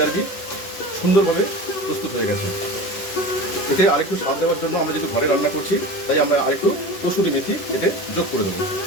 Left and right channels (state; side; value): late; right; 11 ms